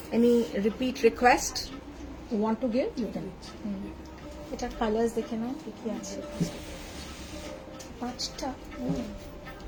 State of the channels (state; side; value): identical; both; correlation 1.00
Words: Any repeat request you want to give? You can. এটা কালার্স দেখে নাও কি আছে। 5টা